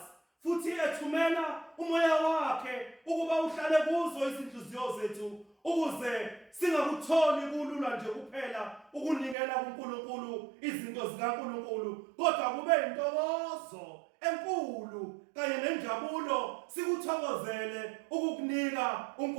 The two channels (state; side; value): drops out; left; at 9.3 s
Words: futhi ethumela umoya wakhe ukuba uhlale kuzo izinhliziyo zethu, ukuze singakutholi kulula nje kuphela ukunikela kuNkulunkulu izinto zikaNkulunkulu, kodwa kube intokozo enkulu kanye nenjabulo sikuthokozele ukukunika